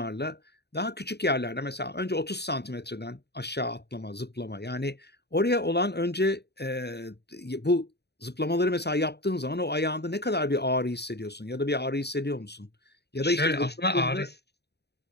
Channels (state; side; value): late; right; 0.48 ms